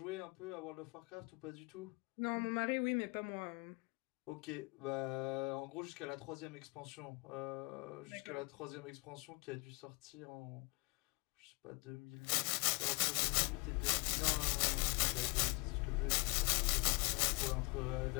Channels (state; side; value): quieter; right; 28.4 dB